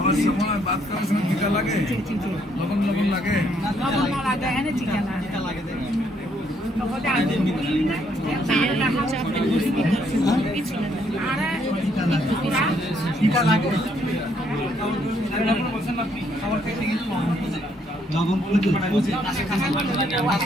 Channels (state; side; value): normal; both; correlation 0.70